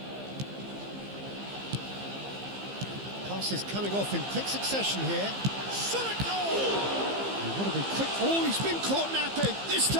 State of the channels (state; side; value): late; left; 15 ms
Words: Pass is coming off in quick succession here. Shot it goal! You've got to be quick. Oh, he's been caught napping. This